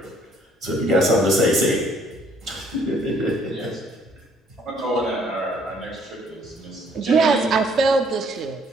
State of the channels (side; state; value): both; normal; correlation 0.63